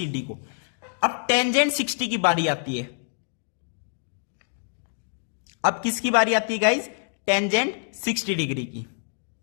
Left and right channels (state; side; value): silent; right; digital silence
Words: डी को। अब टेंजेंट 60 की बारी आती है। अब किसकी बारी आती है गाइज, टेंजेंट 60 डिग्री की।